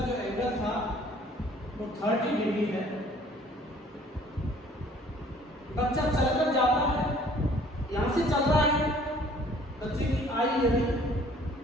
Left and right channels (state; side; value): normal; both; correlation 0.55